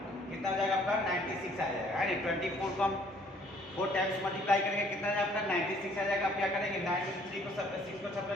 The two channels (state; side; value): normal; both; correlation 0.60